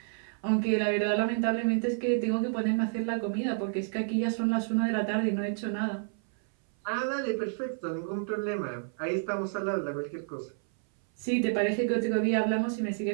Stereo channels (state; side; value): silent; left; 58 dB below the other